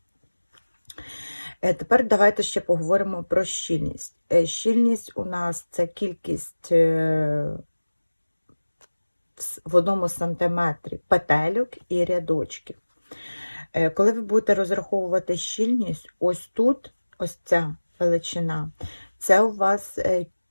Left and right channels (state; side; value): inverted; both; correlation -1.00